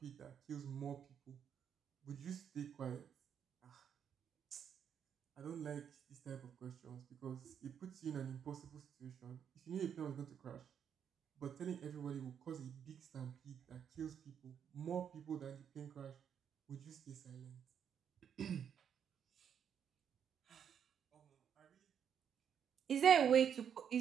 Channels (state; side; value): quieter; left; 8.2 dB